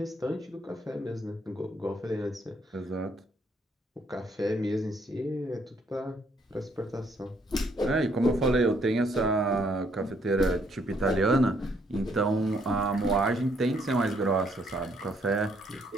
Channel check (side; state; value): both; normal; correlation 0.69